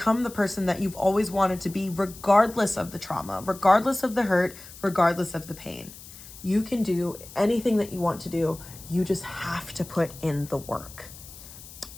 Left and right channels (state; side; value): noise; left; hiss, 17 dB below the sound